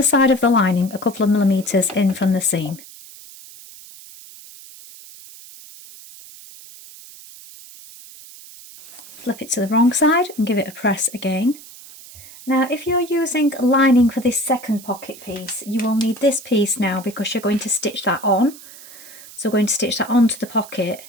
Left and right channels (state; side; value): noise; right; hiss, 18 dB below the sound